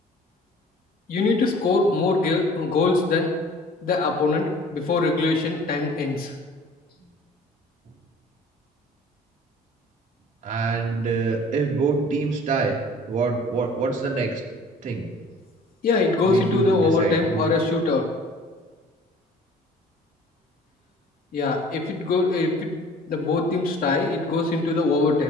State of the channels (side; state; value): both; normal; correlation 0.49